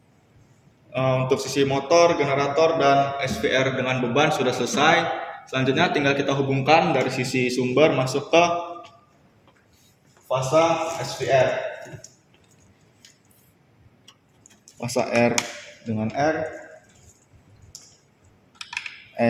untuk sisi motor, generator, dan SVR dengan beban sudah selesai. Selanjutnya tinggal kita hubungkan dari sisi sumber masuk ke fasa SVR. Fasa R dengan R,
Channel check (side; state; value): both; identical; correlation 1.00